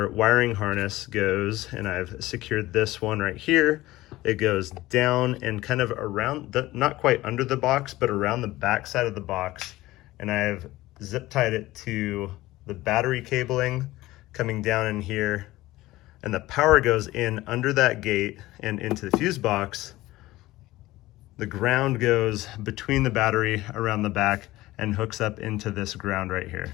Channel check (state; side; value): quieter; right; 17.6 dB